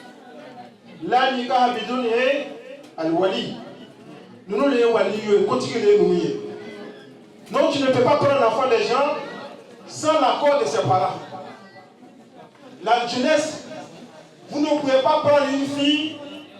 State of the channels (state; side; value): identical; both; correlation 1.00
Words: la nikaha bidun al-wali. Nous les wali continuer nous. Donc tu ne peux pas prendre l'enfant des gens sans l'accord de ses parents. La jeunesse, vous ne pouvez pas prendre une fille